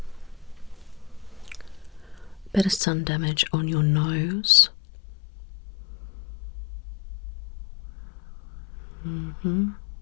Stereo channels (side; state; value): right; drops out; at 2.8 s